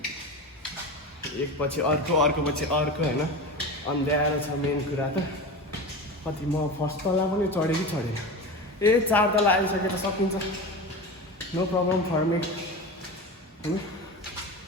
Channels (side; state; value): both; normal; correlation 0.27